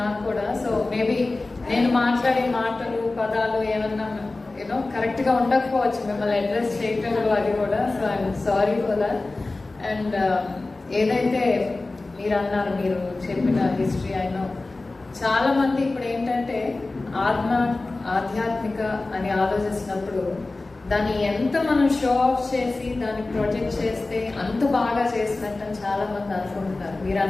నాకు కూడా. సో మేబీ నేను మాట్లాడే మాటలు పదాలు ఏమన్నా కరెక్ట్ గా ఉండకపోవచ్చు, మిమ్మల్ని అడ్రస్ చేయటంలో అది కూడా. So I'm sorry for that. And ఏదైతే మీరు అన్నారు, మీరు చెప్పిన హిస్టరీ అయినా చాలా మంది ఇప్పుడు ఏంటంటే ఆధ్యాత్మిక అని ఆలోచిస్తున్నప్పుడు దాన్ని ఎంత మనం షో ఆఫ్ చేసి దాన్ని ప్రొజెక్ట్ చేస్తే అంత బాగా చేసినట్టు చాలా మంది అనుకుంటున్నారు. మీరు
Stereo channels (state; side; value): quieter; right; 3.2 dB